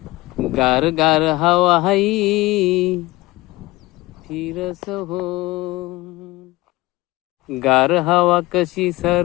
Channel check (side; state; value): right; quieter; 20.3 dB